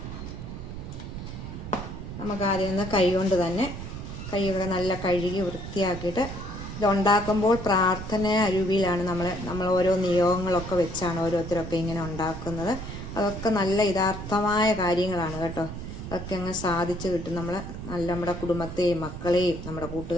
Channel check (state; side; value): noise; right; rumble, 9 dB below the sound